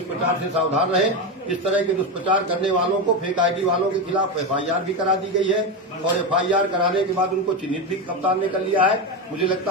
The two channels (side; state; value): both; normal; correlation 0.14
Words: से सावधान रहें। इस तरह के दुष्प्रचार करने वालों को, फेक आईडी वालों के खिलाफ एफआईआर भी करा दी गई है और एफआईआर कराने के बाद उनको चिन्हित भी कप्तान ने कर लिया है। मुझे